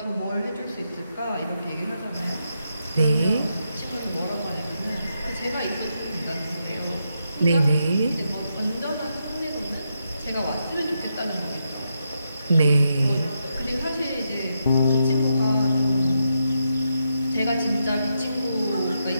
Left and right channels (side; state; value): both; inverted; correlation -0.83